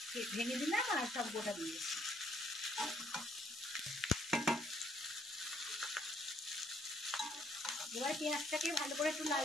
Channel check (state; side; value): normal; both; correlation 0.67